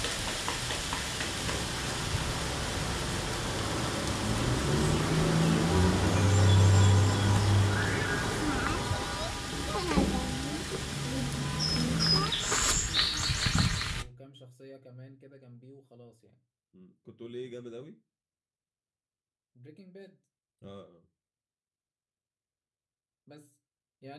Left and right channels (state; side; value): identical; both; correlation 1.00